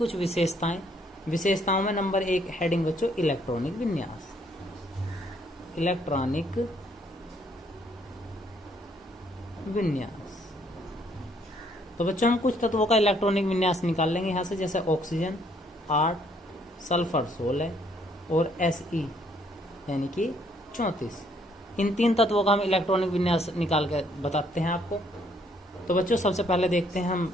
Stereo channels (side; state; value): both; normal; correlation 0.67